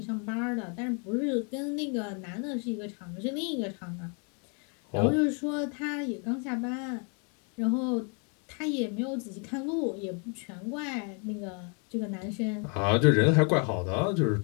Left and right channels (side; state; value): right; quieter; 37.9 dB